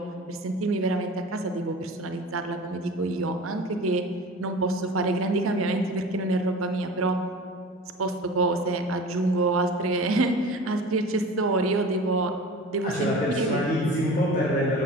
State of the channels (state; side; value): normal; both; correlation 0.38